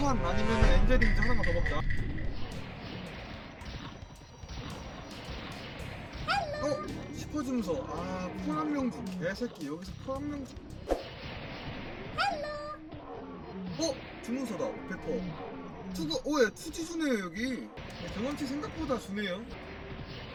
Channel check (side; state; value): both; identical; correlation 1.00